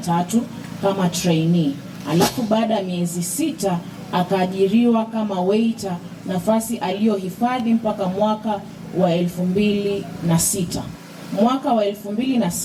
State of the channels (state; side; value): identical; both; correlation 1.00